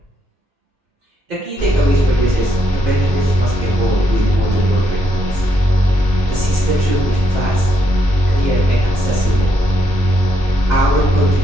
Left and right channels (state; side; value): normal; both; correlation 0.76